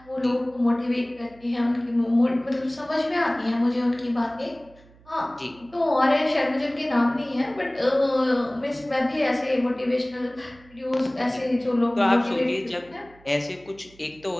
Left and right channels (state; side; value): noise; right; hum, 26 dB below the sound